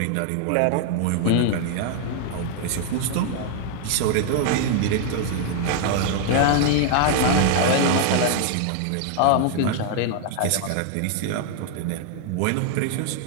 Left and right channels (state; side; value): different; both; correlation 0.00